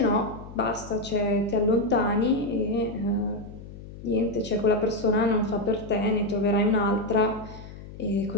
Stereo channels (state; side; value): noise; left; hum, 15 dB below the sound